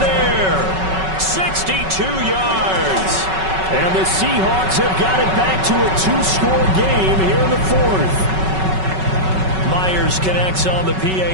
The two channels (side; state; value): left; late; 5.3 ms